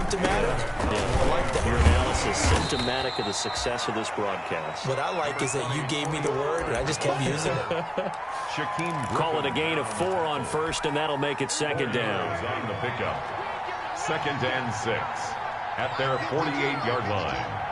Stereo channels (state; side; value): identical; both; correlation 1.00